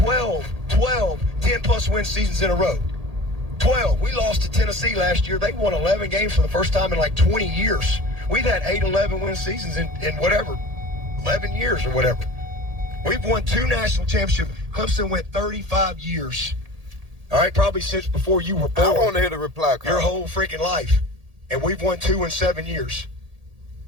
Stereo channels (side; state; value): left; late; 1.8 ms